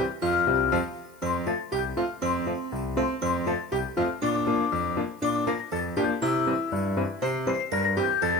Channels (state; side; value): noise; right; hiss, 28 dB below the sound